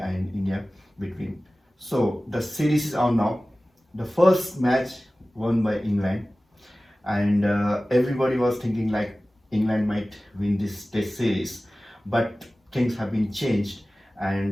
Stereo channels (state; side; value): normal; both; correlation 0.97